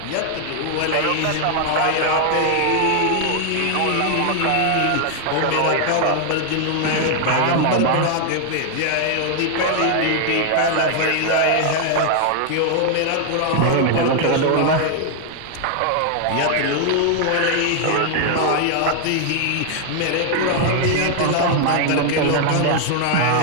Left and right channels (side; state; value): both; different; correlation 0.00